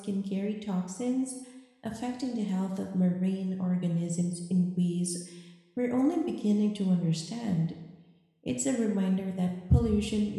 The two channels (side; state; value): both; identical; correlation 1.00